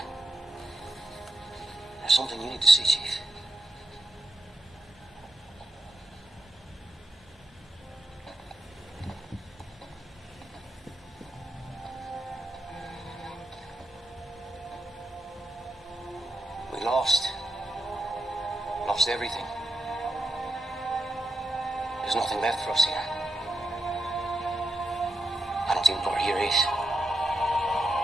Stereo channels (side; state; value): both; normal; correlation 0.84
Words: There's something you need to see, Chief. We lost. Lost everything. There's nothing left for us here. I don't think what here is.